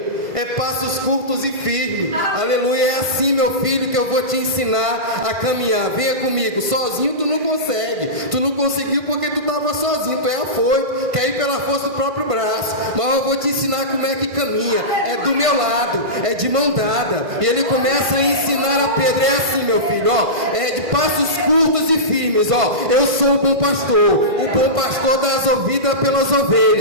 É passos curtos e firmes. Aleluia. É assim, meu filho, que eu vou te ensinar a caminhar. Venha comigo. Sozinho tu não consegue. Tu não conseguiu porque tu estava sozinho. Tu é afoito, quer ir pela força do próprio braço. Mas eu vou te ensinar como é que caminha. É do meu lado, é de mão dada. E ele começa a ensinar a Pedro. É assim, meu filho, é de passos curtos e firmes. Eu sou o bom pastor. O bom pastor dá as vidas pelas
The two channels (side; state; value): left; late; 1.5 ms